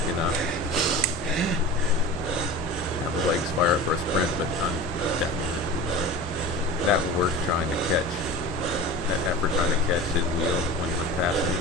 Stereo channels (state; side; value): normal; both; correlation 0.33